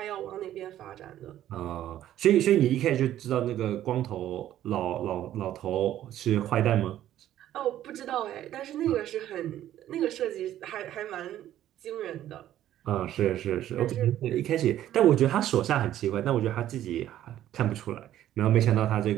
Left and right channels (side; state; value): left; quieter; 12.4 dB